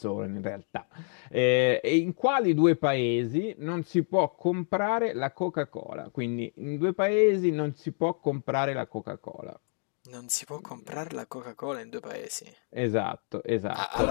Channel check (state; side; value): silent; right; 59 dB below the other